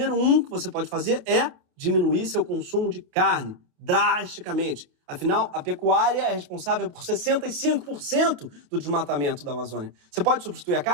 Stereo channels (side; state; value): left; late; 28 ms